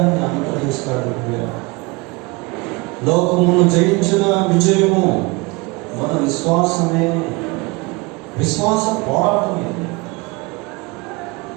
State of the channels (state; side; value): quieter; left; 26.1 dB